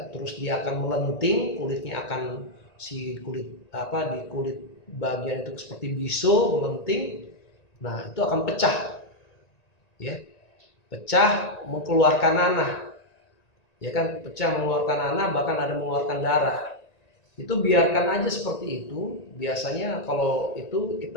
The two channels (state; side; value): late; right; 1.9 ms